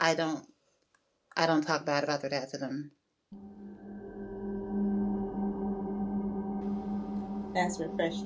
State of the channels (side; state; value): both; identical; correlation 1.00